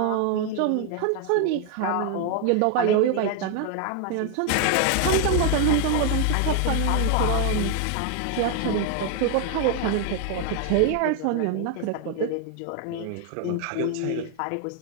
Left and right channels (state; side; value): different; both; correlation 0.00